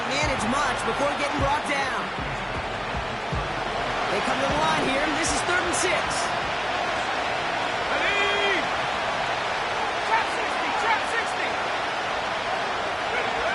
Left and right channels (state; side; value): identical; both; correlation 1.00